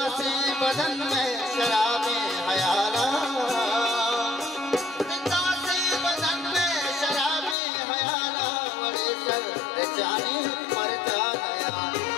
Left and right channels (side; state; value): right; drops out; at 7.6 s